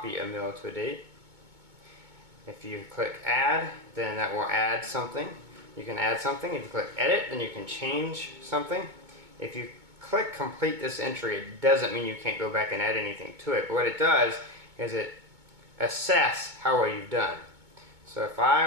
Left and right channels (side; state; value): left; late; 2.2 ms